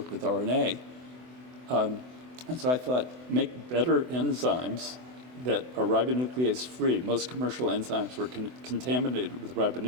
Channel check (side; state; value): left; late; 24 ms